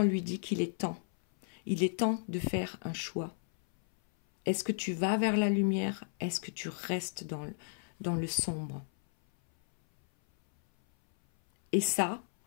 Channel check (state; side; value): silent; right; 56 dB below the other